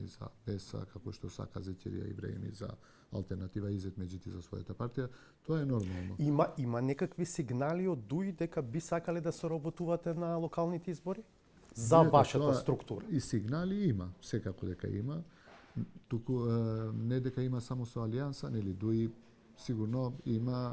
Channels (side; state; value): both; identical; correlation 1.00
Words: за Беса, како што сака Зекерија Ибраими за алтернатива Изетмеджити за својата партија, тоа е нормално. Има некакви сигнали од ДУИ дека би сакале да соработувате на локалните избори? За вашата структура? И сигнали има, секако дека има. Туку не дека има само со Алијанса, нели ДУИ сигурно